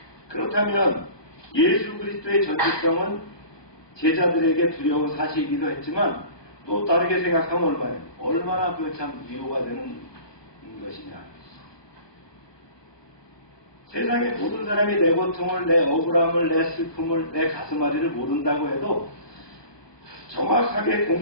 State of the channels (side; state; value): right; late; 1.2 ms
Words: 그렇다면 예수 그리스도의 전지성은 제자들에게 두려운 사실이기도 했지만 또 다르게 생각하면 얼마나 그 참 위로가 되는 것이냐. 세상의 모든 사람이 내 고통을, 내 억울함을, 내 슬픔을, 내 가슴앓이를 모른다고 해도 정확하게